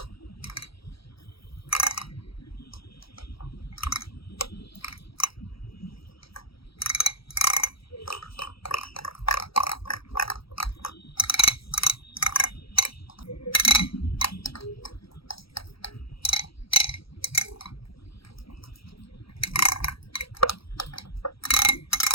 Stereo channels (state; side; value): late; right; 0.75 ms